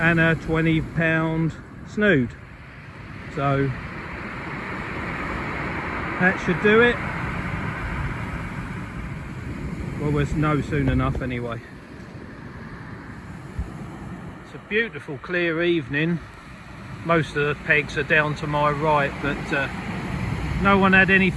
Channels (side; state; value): both; identical; correlation 1.00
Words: a 20-pound snood. So that should do it. Well, there's no soon enough anyway. It's a beautiful clear evening. Most of the pegs are down to my right, but no one had